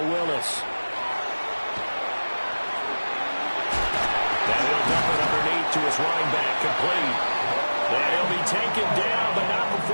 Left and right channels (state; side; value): inverted; both; correlation -1.00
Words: Willis. And he'll dump it underneath to his running back, complete. And he'll be taken down, but not